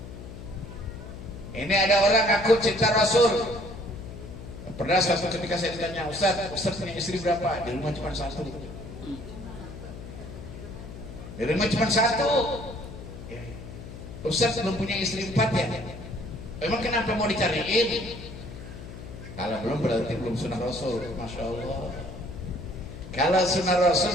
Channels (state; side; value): noise; left; hum, 12 dB below the sound